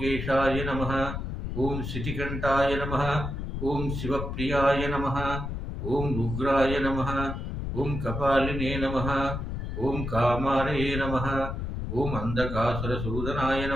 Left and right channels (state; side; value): noise; left; rumble, 4 dB below the sound